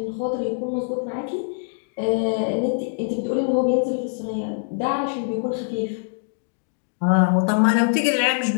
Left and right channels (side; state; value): right; silent; digital silence